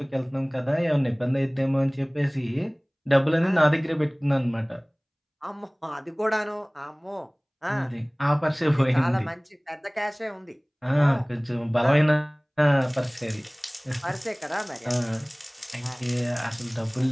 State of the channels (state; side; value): identical; both; correlation 1.00